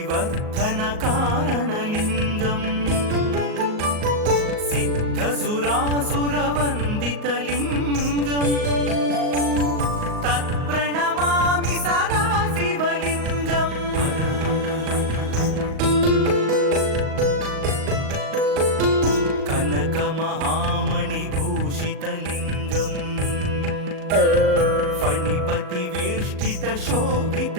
కారణలింగం సిద్ధసురాసురవందితలింగం తత్ప్రణమామి సదా శివలింగం కనకమహామణిభూషితలింగం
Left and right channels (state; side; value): late; left; 38 ms